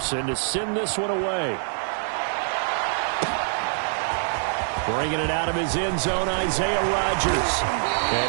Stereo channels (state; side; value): silent; left; digital silence